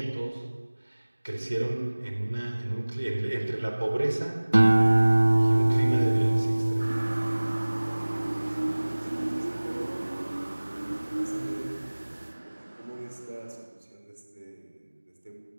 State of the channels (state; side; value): inverted; both; correlation -1.00